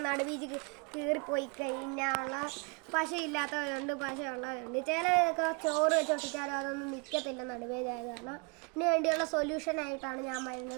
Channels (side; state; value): left; quieter; 31.3 dB